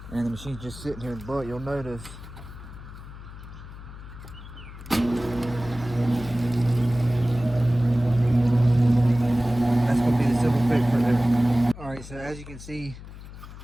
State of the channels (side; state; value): left; noise; hum, 14 dB below the sound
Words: and the machine's just sitting here, but you'll notice that's gonna be the simple fix right there. Alright, so as you can see,